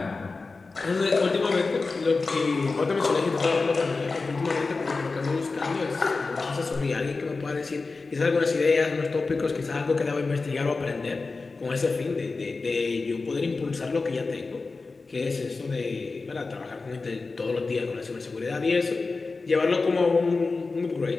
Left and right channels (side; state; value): right; quieter; 3.9 dB